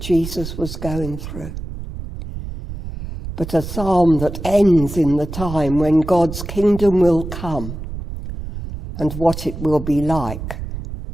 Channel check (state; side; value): noise; right; rumble, 9 dB below the sound